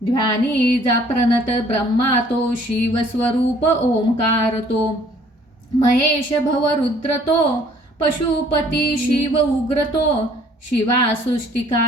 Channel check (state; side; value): normal; both; correlation 0.58